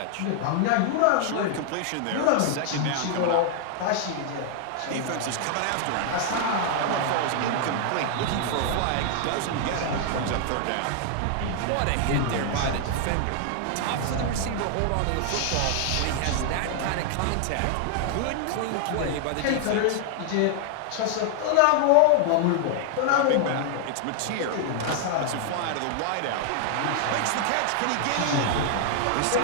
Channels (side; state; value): both; different; correlation 0.00